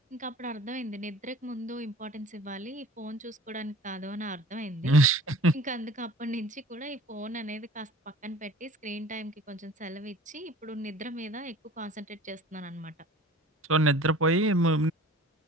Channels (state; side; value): normal; both; correlation 0.44